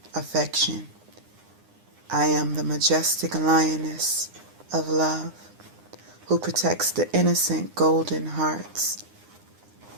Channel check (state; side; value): late; left; 9.8 ms